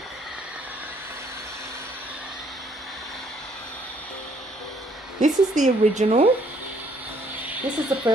This is the original. This is the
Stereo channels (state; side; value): normal; both; correlation 0.65